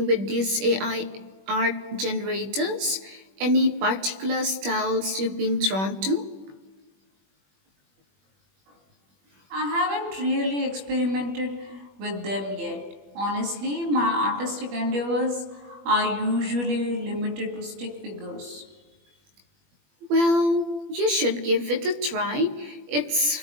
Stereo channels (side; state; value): left; late; 21 ms